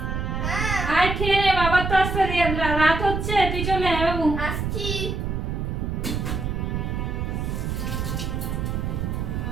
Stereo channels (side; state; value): right; noise; rumble, 2 dB below the sound